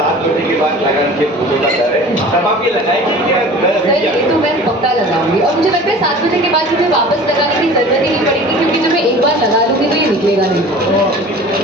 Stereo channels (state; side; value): normal; both; correlation 0.42